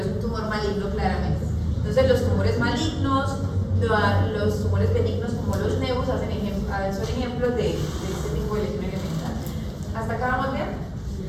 es un tumor maligno claramente. Entonces los tumores malignos, los tumores benignos como los neus son ejemplos de este tipo de lesión elemental. ¿Hasta acá vamos bien?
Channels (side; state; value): both; identical; correlation 1.00